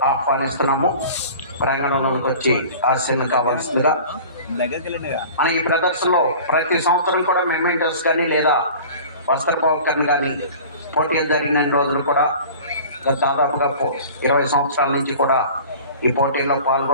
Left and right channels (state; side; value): inverted; both; correlation -0.41